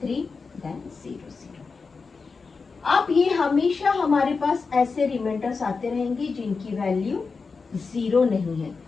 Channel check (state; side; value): quieter; right; 4.7 dB